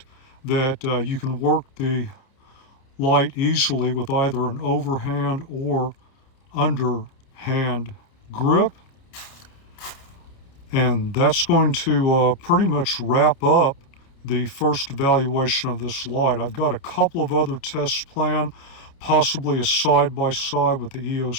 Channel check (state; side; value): late; right; 29 ms